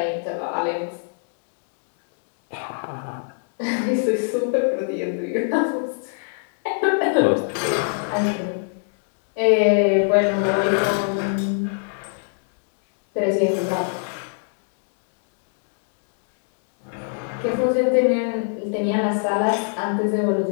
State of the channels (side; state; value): right; silent; digital silence